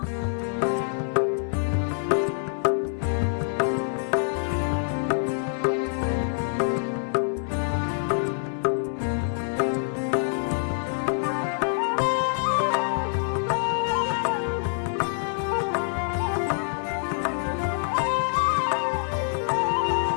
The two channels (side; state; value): right; silent; digital silence